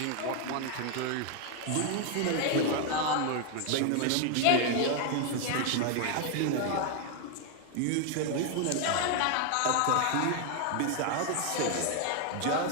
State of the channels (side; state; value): both; different; correlation 0.00